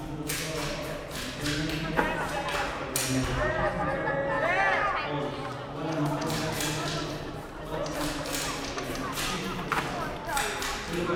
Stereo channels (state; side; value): identical; both; correlation 1.00